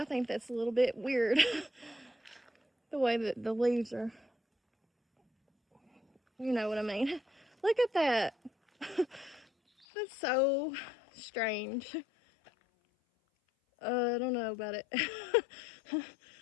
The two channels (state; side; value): drops out; right; at 9.9 s